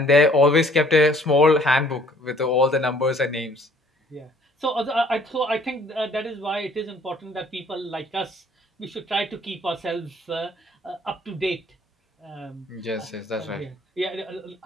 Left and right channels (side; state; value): both; normal; correlation 0.59